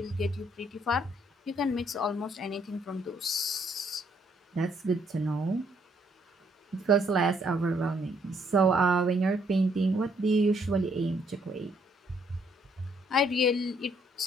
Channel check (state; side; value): normal; both; correlation 0.69